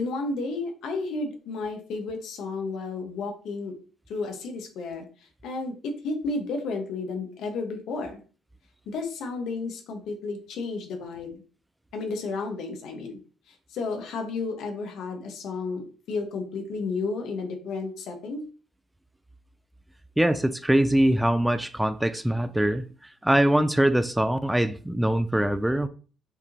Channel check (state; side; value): normal; both; correlation 0.88